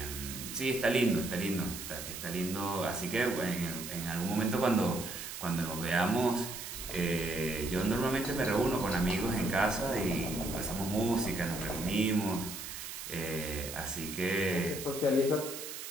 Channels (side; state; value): right; noise; hiss, 8 dB below the sound